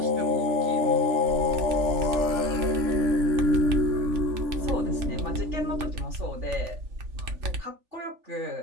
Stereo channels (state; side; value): late; left; 3.4 ms